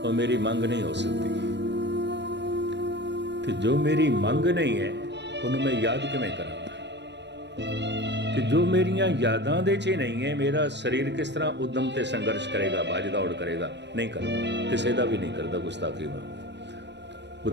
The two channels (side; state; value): left; late; 0.51 ms